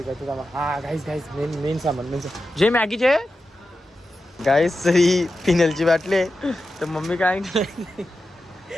करते ना हा गाईस मेन सामान जे मॅगीचे गाईस ही पिनलची बाटली तर मम्मी काय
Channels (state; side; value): normal; both; correlation 0.91